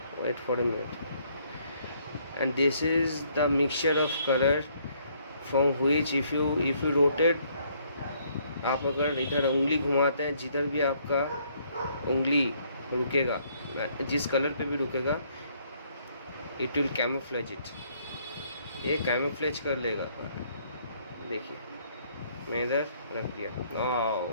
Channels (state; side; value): inverted; both; correlation -0.66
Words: wait for a minute. And this is the mixture of color from which if you rotate, आप अगर इधर उंगली घुमाते हैं, जिधर भी आपका उंगली रुकेगा, जिस कलर पे भी रुकेगा, इट विल कैमोफ्लेज इट. ये कैमोफ्लेज कर लेगा. देखिए, मैं इधर रख दिया.